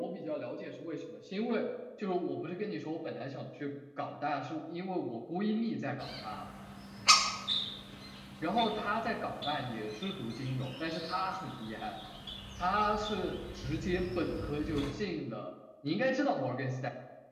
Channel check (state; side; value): identical; both; correlation 1.00